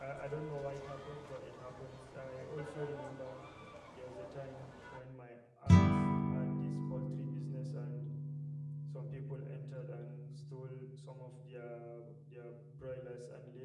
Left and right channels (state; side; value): identical; both; correlation 1.00